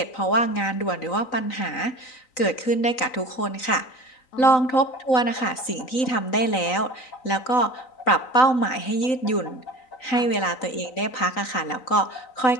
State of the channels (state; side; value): late; right; 3.9 ms